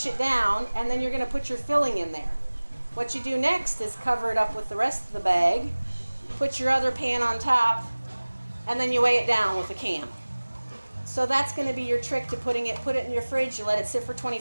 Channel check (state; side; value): inverted; both; correlation -1.00